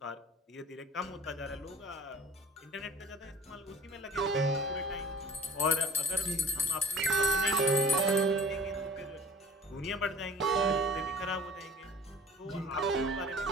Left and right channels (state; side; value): normal; both; correlation 0.46